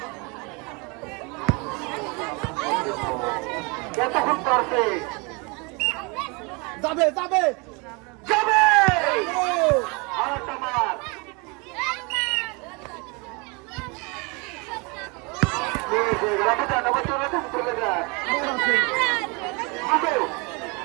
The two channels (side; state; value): left; quieter; 29.7 dB